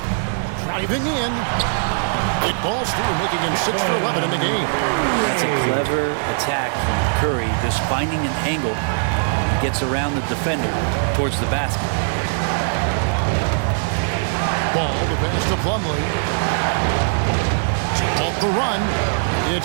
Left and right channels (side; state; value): left; silent; 65 dB below the other